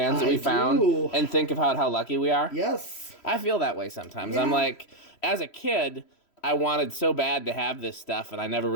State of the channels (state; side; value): late; right; 3.1 ms